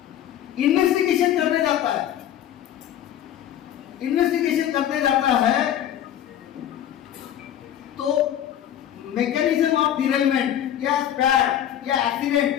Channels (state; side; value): quieter; right; 10.9 dB